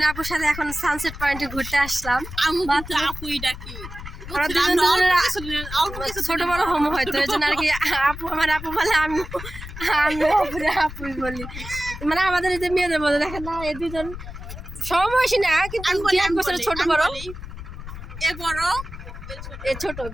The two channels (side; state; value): left; noise; rumble, 11 dB below the sound